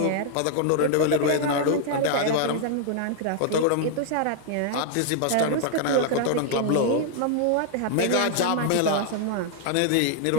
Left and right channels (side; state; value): both; different; correlation 0.00